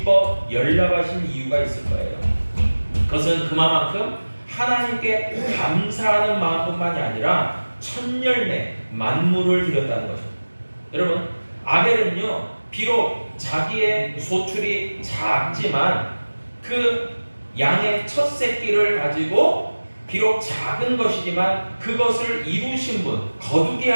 연락하신 이유가 있을 거예요. 그것은 그만큼 하나님께 감사하는 마음뿐만이 아니라 천열매 만물을 드렸다는 것입니다. 여러분, 아벨은요 비록 자기의 소출이 작지만 그 양의 첫 새끼를 가지고 비록 작은 것이지만 그것을 이루신 분, 거두게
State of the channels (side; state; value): both; inverted; correlation -1.00